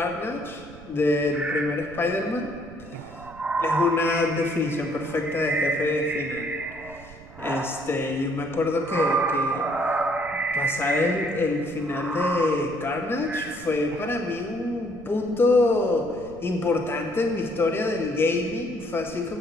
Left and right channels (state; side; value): noise; right; rumble, 19 dB below the sound